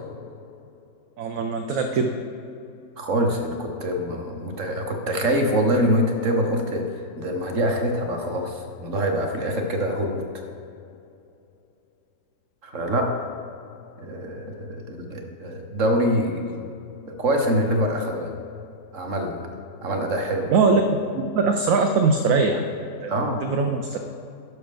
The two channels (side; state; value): left; late; 3.7 ms